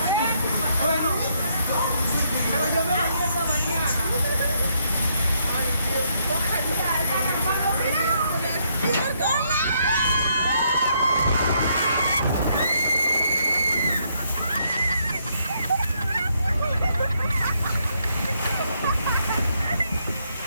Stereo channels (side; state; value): both; inverted; correlation -0.74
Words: Bueno, pero yo me bañé esta mañana.